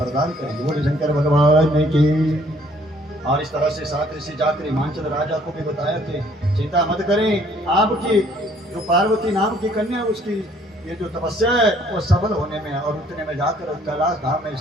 करेंगे। बोले शंकर भगवान की। और इस तरह से 7 ऋषि जाकर हिमाचल राजा को भी बताया कि चिंता मत करें, आपकी जो पार्वती नाम की कन्या उसकी ये जो तपस्या है वो सफल होने में। और उतने में जाकर कैलाश धाम में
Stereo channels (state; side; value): normal; both; correlation 0.61